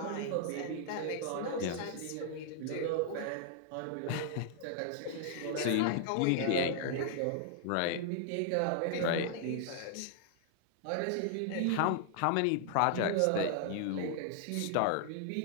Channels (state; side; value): different; both; correlation 0.00